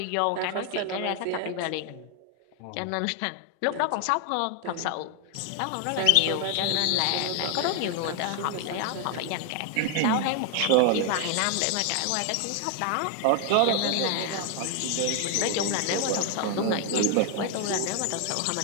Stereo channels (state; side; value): different; both; correlation 0.00